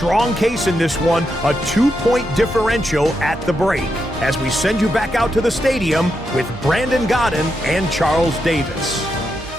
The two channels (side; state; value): both; normal; correlation 0.84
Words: case in this one, a 2-point differential at the break. As we send you back out to the stadium with Brandon Godden and Charles Davis.